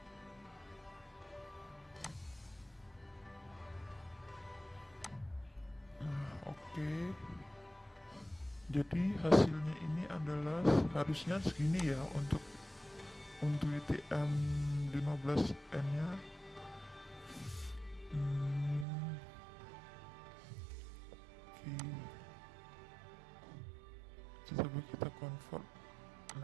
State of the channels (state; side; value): drops out; left; at 18.9 s